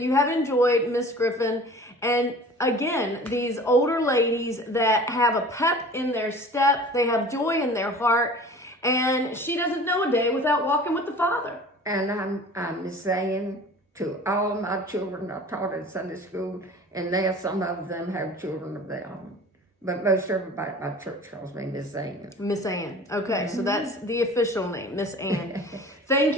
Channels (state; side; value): normal; both; correlation 0.43